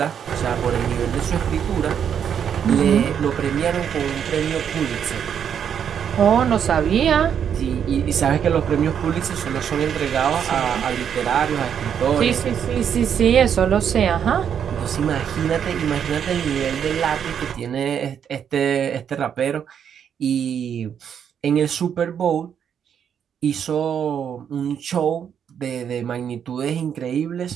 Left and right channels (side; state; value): left; quieter; 8.2 dB